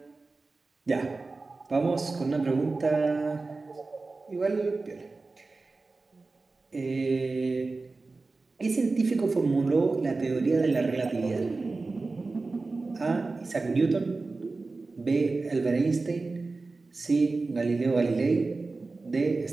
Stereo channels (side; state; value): left; quieter; 3.7 dB